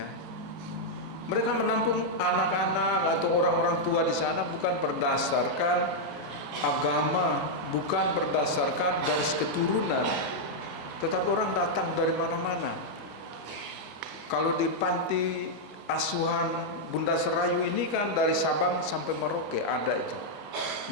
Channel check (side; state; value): both; normal; correlation -0.03